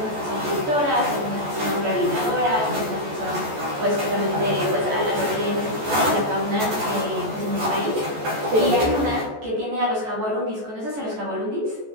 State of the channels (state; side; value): late; left; 14 ms